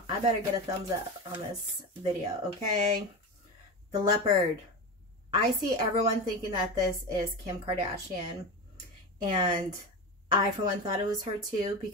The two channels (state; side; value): normal; both; correlation 0.22